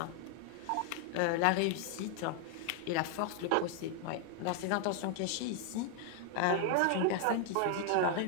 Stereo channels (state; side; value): different; both; correlation 0.00